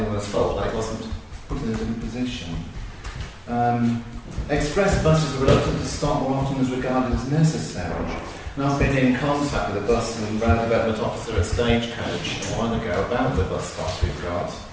fault that it wasn't put in a different position. Express buses are reluctant to stop more often as regarded as necessary. And I've been in contact with a bus and road development officer at Stagecoach a while ago about the bus stops we've got.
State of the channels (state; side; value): identical; both; correlation 1.00